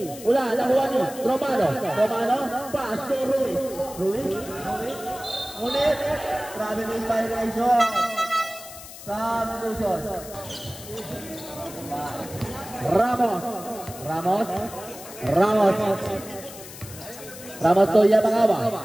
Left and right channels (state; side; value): noise; left; hiss, 15 dB below the sound